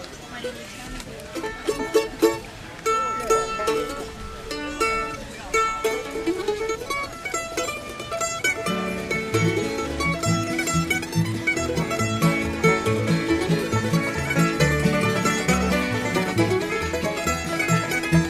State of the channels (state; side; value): identical; both; correlation 1.00